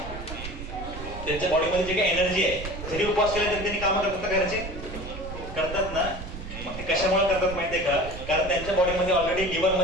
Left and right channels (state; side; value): noise; right; rumble, 9 dB below the sound